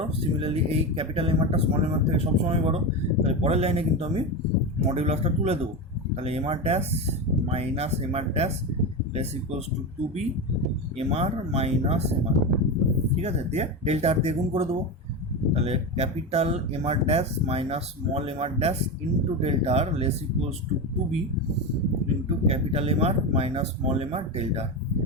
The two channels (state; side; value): normal; both; correlation 0.18